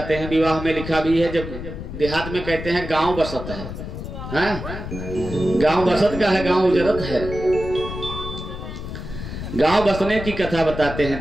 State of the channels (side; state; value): left; noise; rumble, 8 dB below the sound